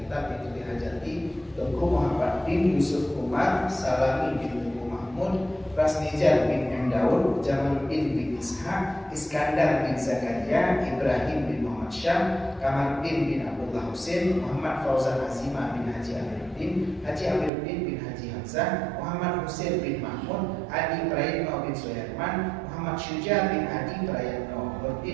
itu dihajati Tengku Muhammad bin Yusuf Umar Salami bin Tengku Mahmud Rasnijar bin M. Daud Jamaluddin bin Ishaq Iskandar bin Zakaria Ibrahim bin Muhammad Syam Kamaluddin bin Abdullah Husain Muhammad Fauzan Azimah bin Haji Amiruddin bin Haji Hamzah Muhammad Husain bin Mahmud Adi Prayitno bin Soyarman Muhammad Syuja bin Adi Prayitno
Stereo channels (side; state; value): left; drops out; at 17.5 s